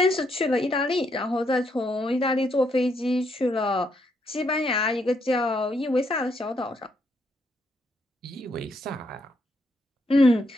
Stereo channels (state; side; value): normal; both; correlation 0.76